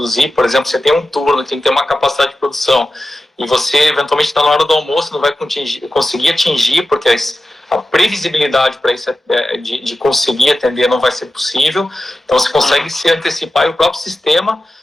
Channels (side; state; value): both; normal; correlation 0.93